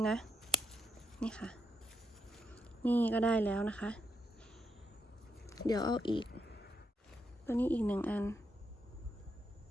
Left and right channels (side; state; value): both; normal; correlation 0.81